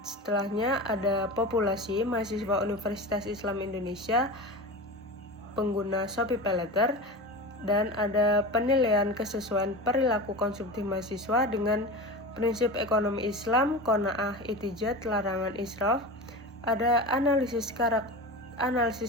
setelahnya ada populasi mahasiswa Universitas Islam Indonesia pengguna Shopee Paylater, dan ada penilaian kesesuaian perilaku konsumtif mahasiswa dengan prinsip ekonomi Islam, qanaah, itijat, larangan israf. Ada analisis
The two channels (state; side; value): normal; both; correlation 0.28